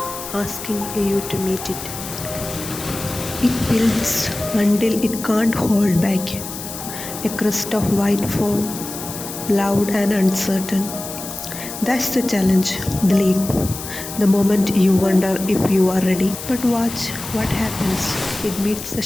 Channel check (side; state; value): left; noise; hiss, 10 dB below the sound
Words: asking you to meet it. It builds until it can't hold back. A crust of white foam, loud and uncertain. That's the challenge, the leap, the moment you wonder if you are ready. But watch what happens. It meets the